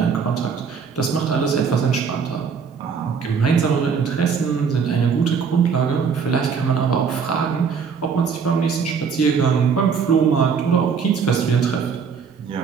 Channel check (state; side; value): quieter; left; 6.1 dB